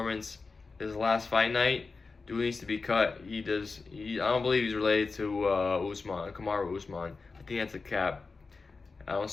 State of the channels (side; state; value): right; quieter; 4.3 dB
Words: his last fight night. Dude needs to be cut. I don't believe he's related to Usman, Kamaru Usman. I think that's a cap. I don't